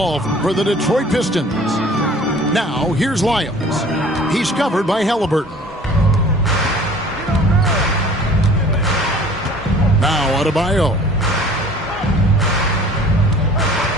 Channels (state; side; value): normal; both; correlation 0.48